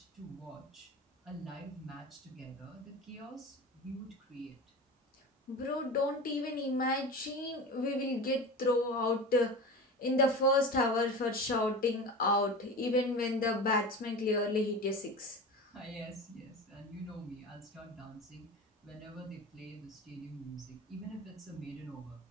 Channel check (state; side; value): normal; both; correlation 0.30